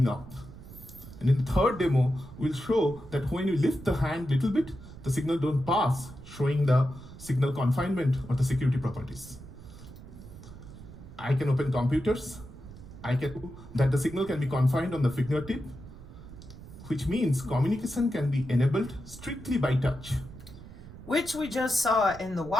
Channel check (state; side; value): noise; right; rumble, 16 dB below the sound